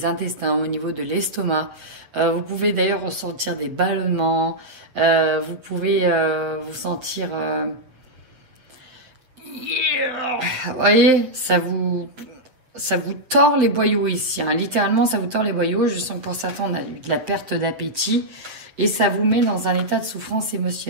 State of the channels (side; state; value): left; late; 7.6 ms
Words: intestins, au niveau de l'estomac. Vous pouvez d'ailleurs ressentir des ballonnements. Vous pouvez vous sentir... Vous voyez, ça vous tord les boyaux ici. Hein. Littéralement, ça vous tord les boyaux. Je sens que pour certains, on a eu de la perte d'appétit. Et ça vous met dans un état de souffrance